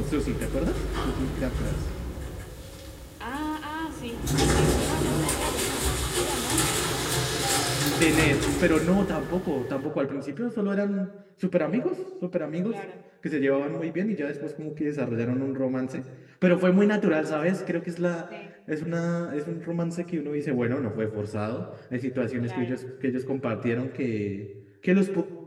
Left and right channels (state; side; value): identical; both; correlation 1.00